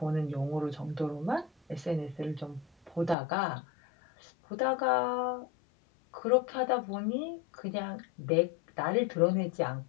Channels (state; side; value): drops out; right; at 3.2 s